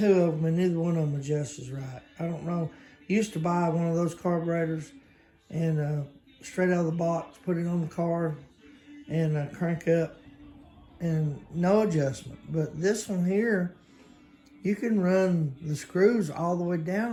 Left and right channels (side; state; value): both; identical; correlation 1.00